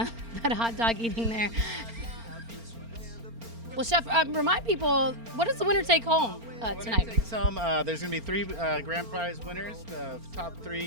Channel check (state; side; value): late; left; 4.4 ms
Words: hot dog eating there. Well, Chef, remind people, what does the winner take home tonight? Takes home, there's going to be 3 grand prize winners. The top